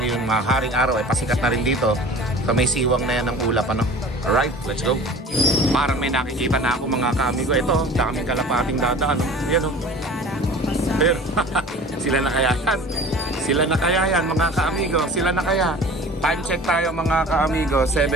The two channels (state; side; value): normal; both; correlation 0.41